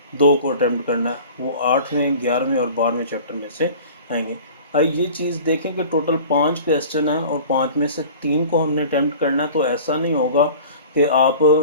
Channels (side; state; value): both; inverted; correlation -0.42